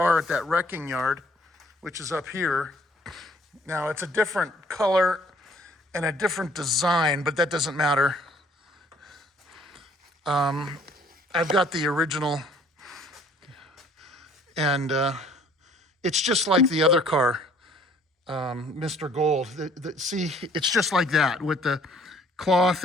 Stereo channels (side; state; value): both; normal; correlation 0.58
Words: at that wrecking yard, which is up here. Now, it's a different color and a different design, but that doesn't matter. I've got the original, and it's just like the other car, Mr. Gold. See, it's just like that with the cloth